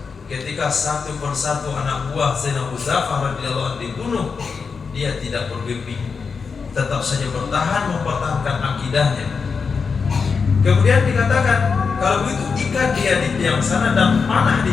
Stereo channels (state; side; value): quieter; right; 5.3 dB